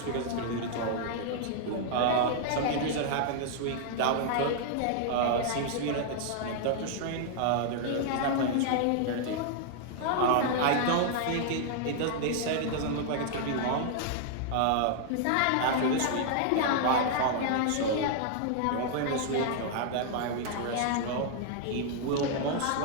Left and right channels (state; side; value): different; both; correlation -0.01